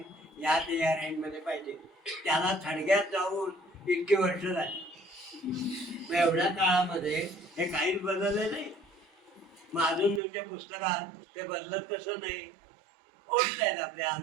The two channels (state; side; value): drops out; left; at 10.2 s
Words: या रेंजमध्ये पाहिजे, त्याला थडग्यात जाऊन इतकी वर्ष झाली. मग एवढ्या काळामध्ये हे काहीच बदलले नाही. मग अजून तुमच्या पुस्तकात ते बदलत कसं नाही, ओढत आहेत आपल्या